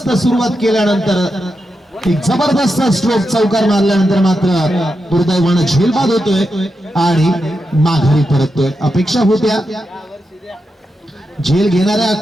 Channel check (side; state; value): both; normal; correlation 0.87